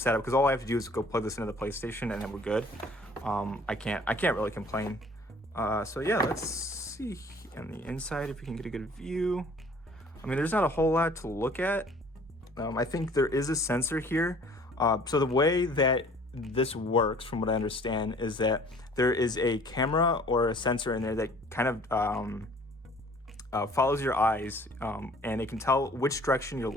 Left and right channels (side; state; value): both; normal; correlation 0.52